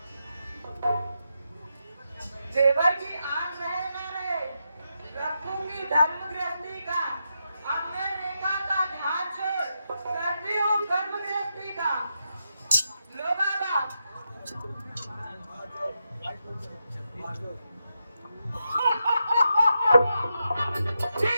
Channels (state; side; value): inverted; both; correlation -0.85